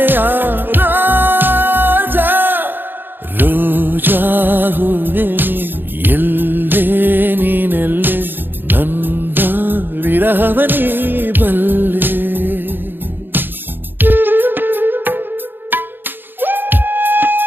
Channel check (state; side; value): late; left; 0.097 ms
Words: ರಾಜಾ ರೋಜಾ ಹೂವೆ ಎಲ್ಲೇ ನೀನೆಲ್ಲೇ ನನ್ನ ವಿರಹವನೇ